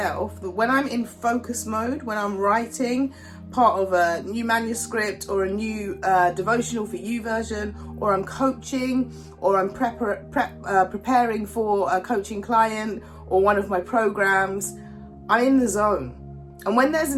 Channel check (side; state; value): both; identical; correlation 1.00